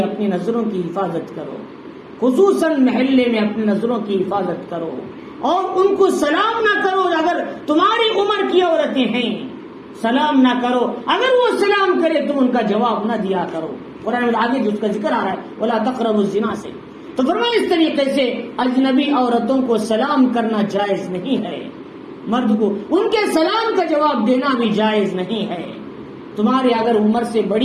اپنی نظروں کی حفاظت کرو، خصوصاً محلے میں اپنی نظروں کی حفاظت کرو، اور ان کو سلام نہ کرو اگر تمہاری عمر کی عورتیں ہیں، سلام نہ کرو، اگر وہ سلام کرے تم ان کا جواب نہ دیا کرو۔ قرآن میں آگے جو اس کا ذکر آ رہا ہے وَلَا تَقْرَبُوا الزِّنَا سے، تو فرمایا اس طریقے سے اجنبی عورتوں کو سلام کرنا جائز نہیں ہے، مرد کو ان کے سلام کا جواب دینا بھی جائز نہیں ہے۔ تمہارے اگر عمر سے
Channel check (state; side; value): identical; both; correlation 1.00